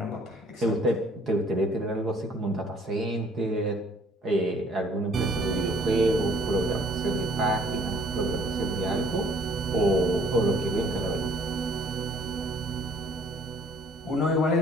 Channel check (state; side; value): normal; both; correlation 0.58